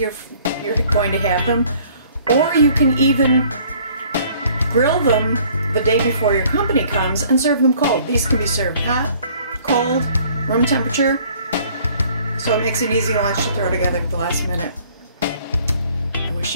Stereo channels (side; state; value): both; inverted; correlation -0.57